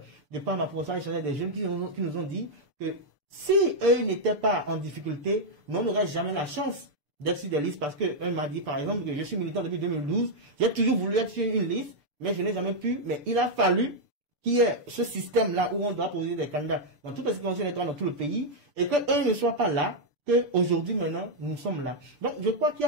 de par ma profession échanger des jeunes qui nous ont dit que si eux n'étaient pas en difficulté, nous n'aurions jamais la chance d'être sur des listes, parce qu'un m'a dit par exemple que je suis militant depuis 2012, j'ai toujours voulu être sur une liste, mais je n'ai jamais pu, mais il a fallu qu'il y ait ce système-là où on doit poser des candidats dans toutes les situations électorales dans tout le pays, et qu'eux ne soient pas là, qu'aujourd'hui, maintenant, nous sommes là. Donc, je crois qu'il y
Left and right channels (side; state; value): left; late; 6.8 ms